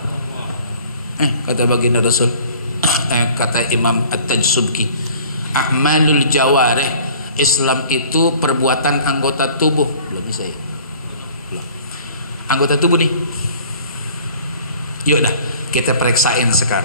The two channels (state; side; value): inverted; both; correlation -0.50